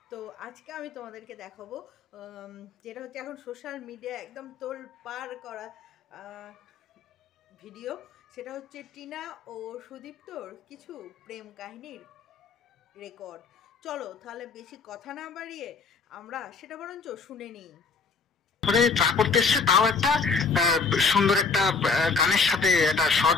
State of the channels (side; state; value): right; quieter; 4.7 dB